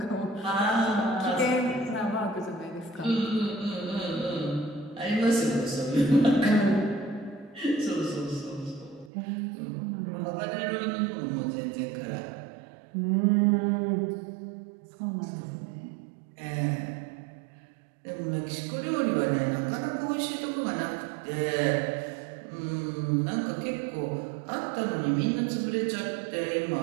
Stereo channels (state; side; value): drops out; left; at 9.1 s